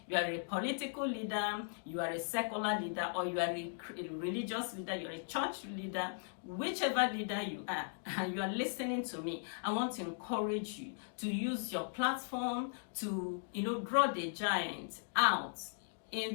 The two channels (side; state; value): right; silent; digital silence